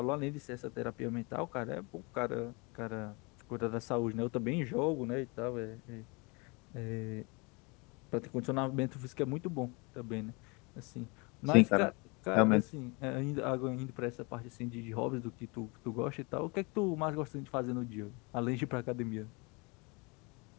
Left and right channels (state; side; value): quieter; right; 29.2 dB